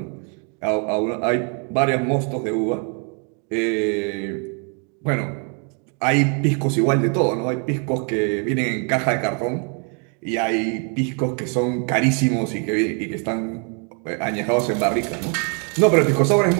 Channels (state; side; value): quieter; left; 39.1 dB